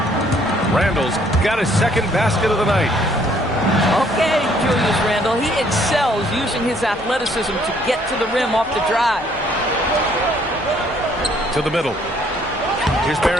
Randall's got his second basket of the night. Okay, Julius Randle. He excels using his athleticism to get to the rim off the drive. To the middle. Here's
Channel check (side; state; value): both; normal; correlation 0.64